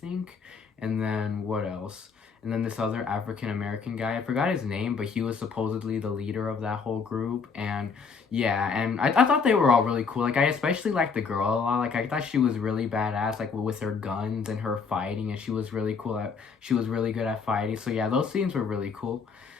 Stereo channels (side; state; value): right; quieter; 5.4 dB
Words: And then what else? And then this other African American guy, I forgot his name, but he was supposedly the leader of that whole group. And yeah, and I thought they were all really cool. Like I especially liked the girl a lot. Like I thought she was really badass, like with her guns and her fighting, and she was really cool she was really good at fighting. So yeah, those scenes were really cool.